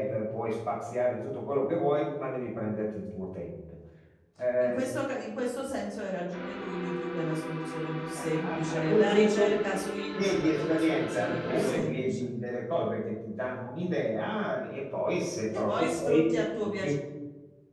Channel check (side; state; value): both; identical; correlation 1.00